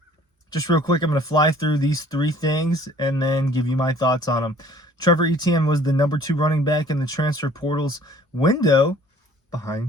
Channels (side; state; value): both; normal; correlation 0.54